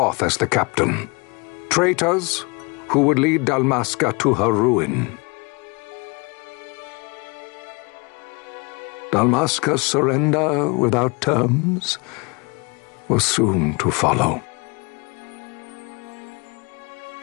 as the captain, traitors who would lead Dalmasca to her ruin. Dalmasca's surrender without terms was soon to follow.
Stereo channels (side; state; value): right; quieter; 29.7 dB